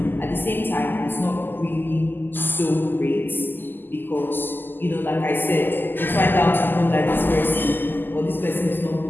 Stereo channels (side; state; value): right; late; 0.093 ms